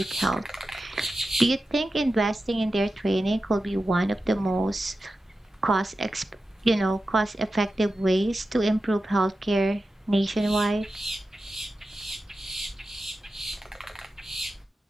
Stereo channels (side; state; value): both; normal; correlation 0.92